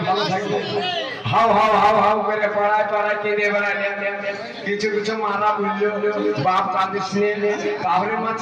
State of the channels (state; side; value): identical; both; correlation 1.00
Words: ভালো থাকবে? হাউ হাউ হাউ হাউ করে পড়ায় পড়ায় কেঁদে বেড়ালে। কিছু কিছু মারা বললো বাপ কাঁদিস নে, তাহলে মা